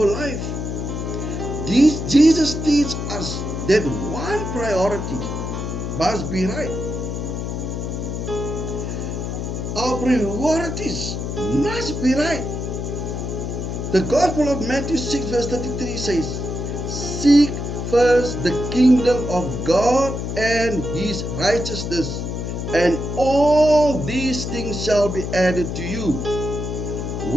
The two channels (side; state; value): left; noise; hum, 4 dB below the sound